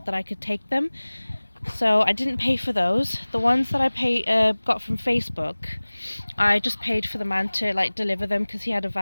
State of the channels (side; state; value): both; inverted; correlation -1.00